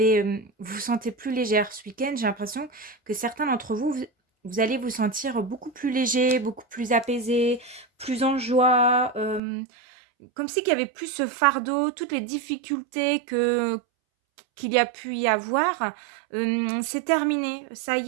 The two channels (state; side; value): drops out; left; at 9.4 s